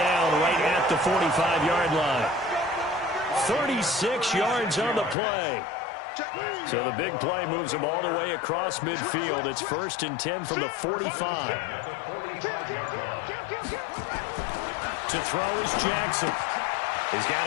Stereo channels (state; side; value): drops out; right; at 5.2 s